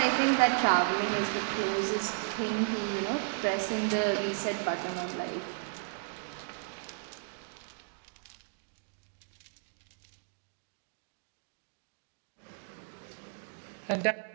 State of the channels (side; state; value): left; silent; digital silence